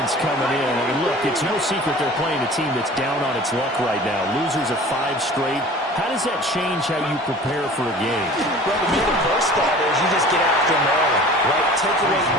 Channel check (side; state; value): both; normal; correlation 0.43